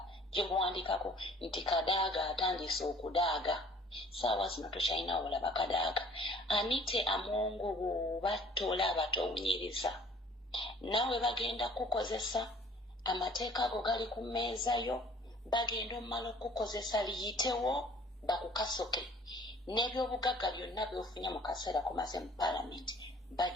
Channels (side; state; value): both; normal; correlation 0.53